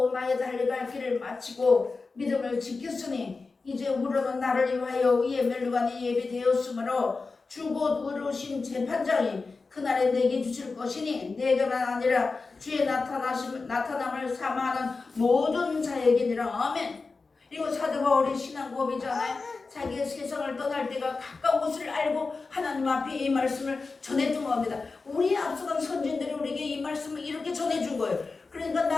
나의 달려갈 길을 마치고 믿음을 지켰으니 이제 우러는 나를 위하여 이에 멸류관이 예비되었으므로 주 곧 의로우신 재판장이 그날에 내게 주실 것이니 내게만 아니라 주의 나타남을 사모하는 모든 자에게니라. 아멘. 이거 사도 바울의 신앙 고백이잖아요. 자기가 세상을 떠날 때가 가까운 것을 알고 하나님 앞에 이 말씀을 전해준 겁니다. 우리 앞서간 선진들이 우리에게 이 말씀을 이렇게 전해준 거예요. 그러니까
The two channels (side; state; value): right; quieter; 4.1 dB